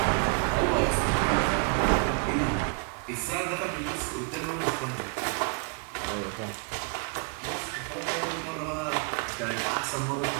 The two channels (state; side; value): quieter; left; 38.4 dB